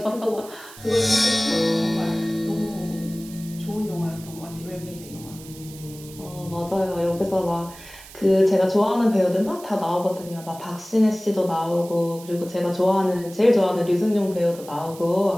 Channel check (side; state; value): right; noise; hiss, 18 dB below the sound